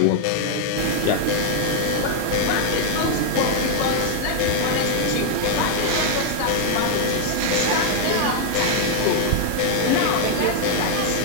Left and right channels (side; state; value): both; different; correlation -0.01